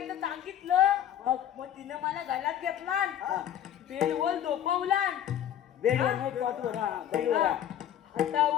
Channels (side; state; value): right; quieter; 10.4 dB